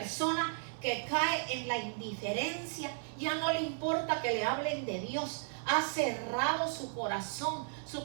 que cae en la indiferencia, ya no le importa que le hablen de Dios, ha cerrado su corazón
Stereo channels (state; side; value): silent; left; 55 dB below the other